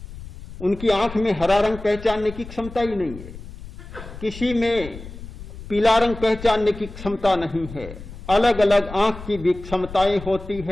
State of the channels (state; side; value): noise; left; rumble, 14 dB below the sound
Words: उनकी आंख में हरा रंग पहचानने की क्षमता ही नहीं है। किसी में पीला रंग पहचानने की क्षमता नहीं है। अलग अलग आंख की भी क्षमताएं होती